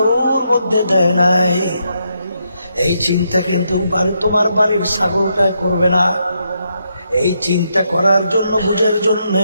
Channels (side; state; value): both; inverted; correlation -0.79